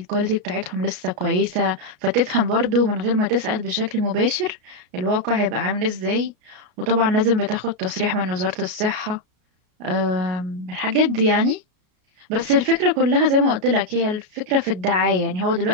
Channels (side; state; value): left; late; 33 ms